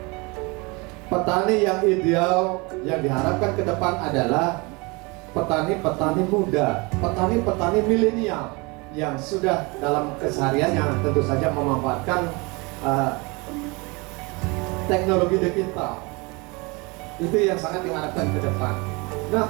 Petani yang ideal yang diharapkan ke depan adalah petani-petani muda, petani-petani milenial yang sudah dalam kesehariannya tentu saja memanfaatkan teknologi digital. Itu yang sangat diharapkan ke depan. Nah,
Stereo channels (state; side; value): quieter; left; 27.2 dB